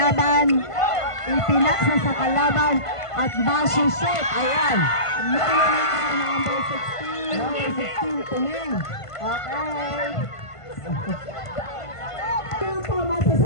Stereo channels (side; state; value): right; late; 1.5 ms